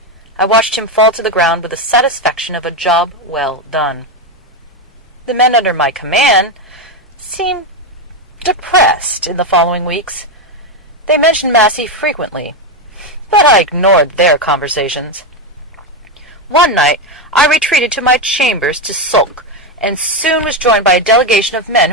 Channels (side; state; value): both; normal; correlation 0.09